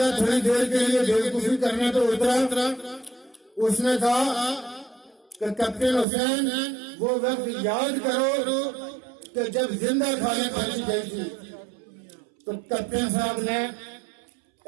تھوڑی دیر کے لیے بیوقوفی کرنے تو اترا، اس نے کہا کہ کیپٹن حسین وہ وقت یاد کرو کہ جب زندہ کھانے پھینکی گئی تھی، تو کیپٹن صاحب نے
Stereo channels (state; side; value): drops out; left; at 6.1 s